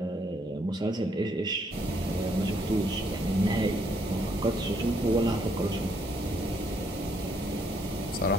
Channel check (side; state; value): both; normal; correlation 0.71